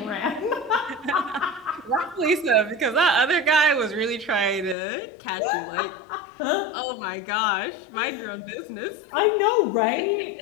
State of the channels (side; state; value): right; drops out; at 4.8 s